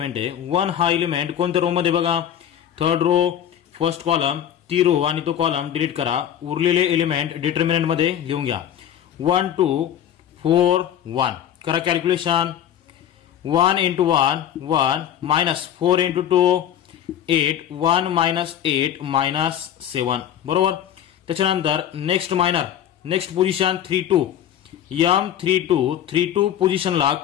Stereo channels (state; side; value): quieter; right; 10.2 dB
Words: आहे. 1 हा एलिमेंट कोणत्या रो मध्ये बघा, थर्ड रो, फर्स्ट कॉलम. ती रो आणि तो कॉलम डिलीट करा. उरलेले एलिमेंट डिटर्मिनंट मध्ये लिहून घ्या. 1 2 4 1 करा कॅल्क्युलेशन. 1 × 1 1 मायनस 4 × 2 8 1 मायनस 8 -7 बरोबर. त्याच्यानंतर next minor next position 3 2 m 3 2 3 2 पोझिशनला